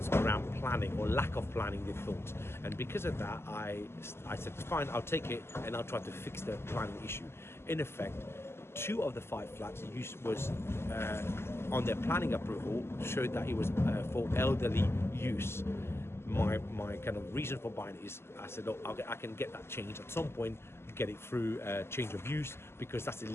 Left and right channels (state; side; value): late; right; 0.12 ms